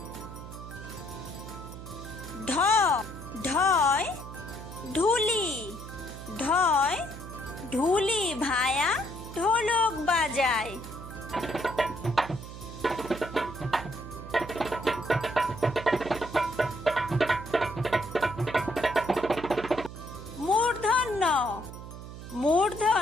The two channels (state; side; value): noise; right; hum, 12 dB below the sound